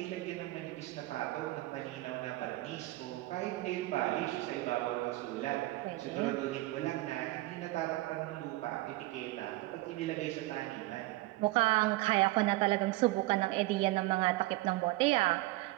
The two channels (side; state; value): left; quieter; 19.2 dB